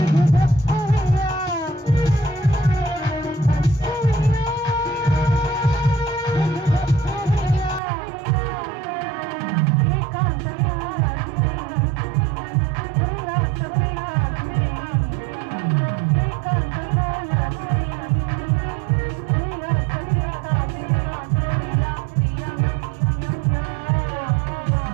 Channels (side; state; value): left; drops out; at 7.8 s